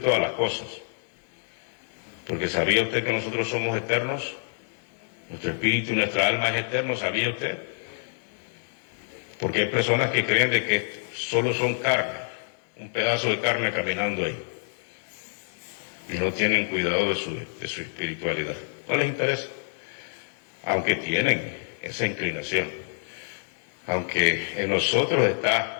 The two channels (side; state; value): right; silent; digital silence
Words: las cosas. Porque ¿sabía usted que nosotros somos eternos? Nuestro espíritu y nuestra alma es eterno, ¿sabía usted? Porque hay personas que creen de que solo son carne, un pedazo de carne caminando ahí. Y no tienen cuidado de su espiritualidad. No les interesa. Aunque tienen esa inclinación. Aunque en nosotros